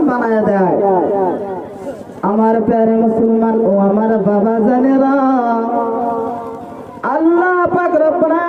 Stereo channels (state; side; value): identical; both; correlation 1.00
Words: বানায় দেয়। আমার প্যারে মুসলমান ও আমার বাবা জানেরা, আল্লাহ পাক রব্বুল